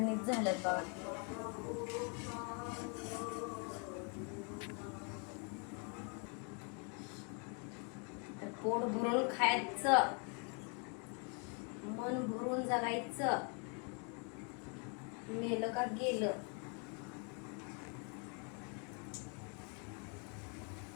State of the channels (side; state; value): right; quieter; 37.4 dB